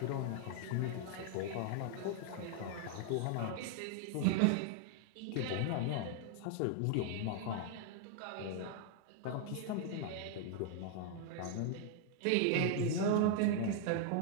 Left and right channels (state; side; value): different; both; correlation 0.00